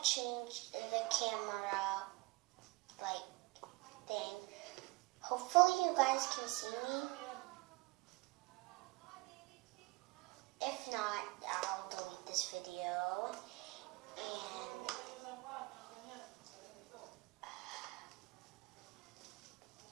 changed the camera like thing. Hopefully you guys can see me. If not, I'll delete this video.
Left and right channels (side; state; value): left; quieter; 24.5 dB